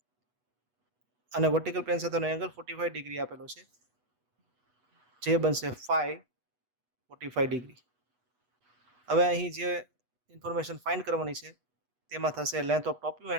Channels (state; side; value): late; left; 8.2 ms